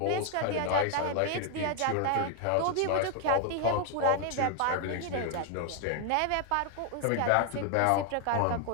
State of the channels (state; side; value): different; both; correlation 0.00